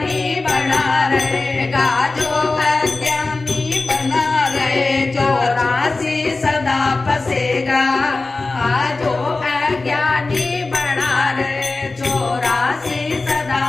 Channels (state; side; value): quieter; right; 3.5 dB